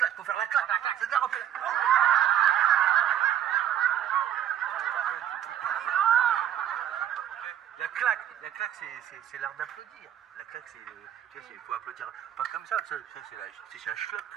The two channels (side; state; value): left; quieter; 10.6 dB